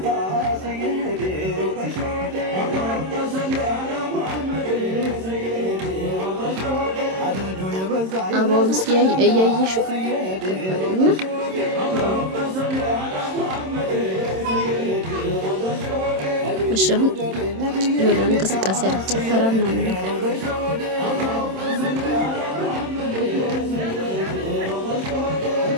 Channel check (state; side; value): late; left; 27 ms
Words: አባውን እስኪ እያየሽው እና መሻሁን የሆነ እንቅስቃሴ ጭፈራ ምናምን